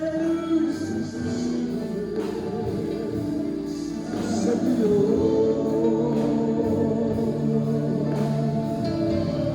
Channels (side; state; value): both; identical; correlation 1.00